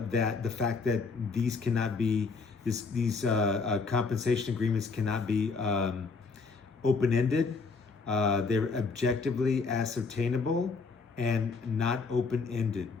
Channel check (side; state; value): right; quieter; 4.5 dB